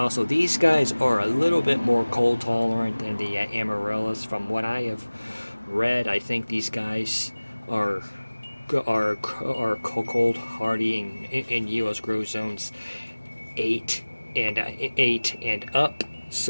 these guys are a little bit more cold tolerant than the amaryllis. From what I have read, I think these guys are cold hardy in U.S. grow zones 8 and up.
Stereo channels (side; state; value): both; inverted; correlation -1.00